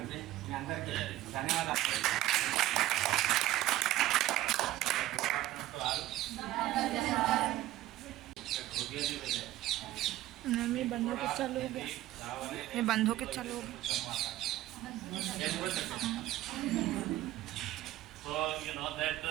మీ అందరికీ ధన్యవాదాలు. ये बंद होके चालू हो गया, ये बंद होके चालू हो गया. So you know that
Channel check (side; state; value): left; quieter; 15.3 dB